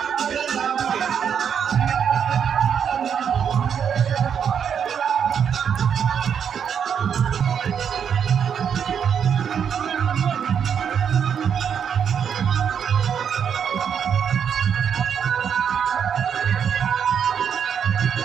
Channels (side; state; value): left; quieter; 7.7 dB